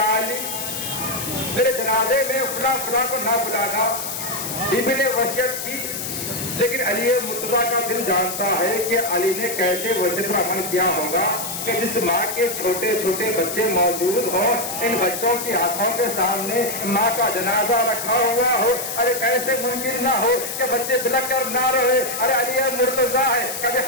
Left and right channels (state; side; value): noise; left; hiss, 5 dB below the sound